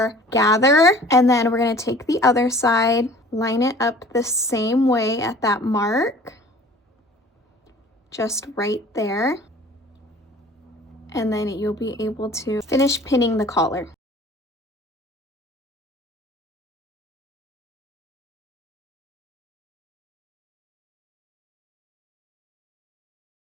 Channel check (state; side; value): normal; both; correlation 0.48